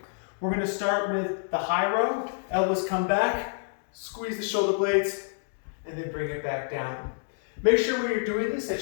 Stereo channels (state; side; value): silent; right; digital silence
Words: We're going to start with the high row. Elbows come back, squeeze the shoulder blades, and then bring it back down. Make sure when you're doing this